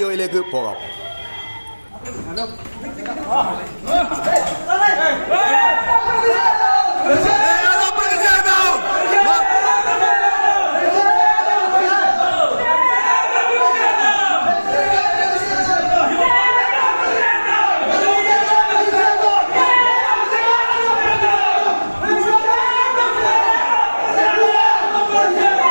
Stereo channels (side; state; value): both; inverted; correlation -1.00